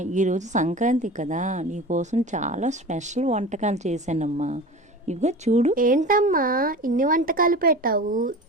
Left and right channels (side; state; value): both; normal; correlation 0.34